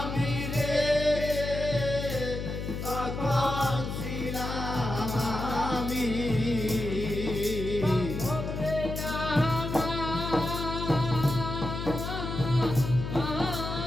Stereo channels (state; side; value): noise; left; hum, 5 dB below the sound